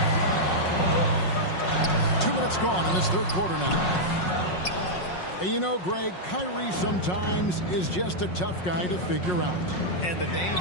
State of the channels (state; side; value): late; right; 5.5 ms